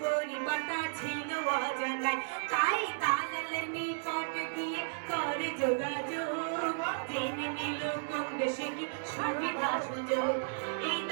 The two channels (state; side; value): silent; left; 55 dB below the other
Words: পরিবারটা ছিল অজানায় তাই দালালের নিকটে গিয়ে করে যোগাযোগ জেনে নিল কোন দেশে কি সুবিধা সুযোগ এই